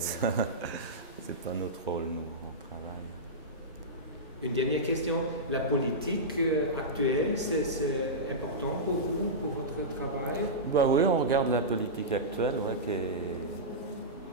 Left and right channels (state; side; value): normal; both; correlation -0.14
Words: ça. C'est pas notre rôle, nous, on travaille. Une dernière question. La politique actuelle, c'est important pour vous, pour votre travail? Oui, on regarde la politique actuelle, qui